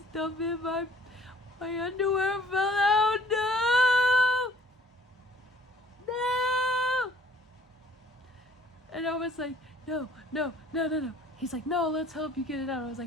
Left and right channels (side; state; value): both; normal; correlation 0.55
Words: in, my underwear fell out. No! And I was like, no. He's like, no, let's help you get it out. I was